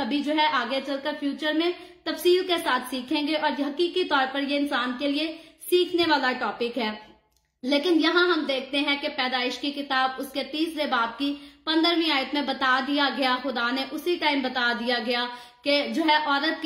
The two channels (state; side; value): identical; both; correlation 1.00